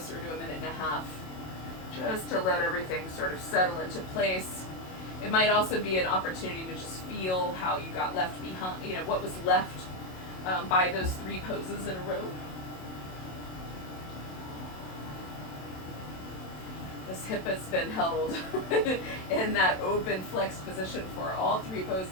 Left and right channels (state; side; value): late; right; 27 ms